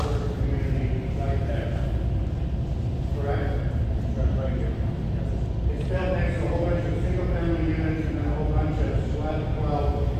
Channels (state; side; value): identical; both; correlation 1.00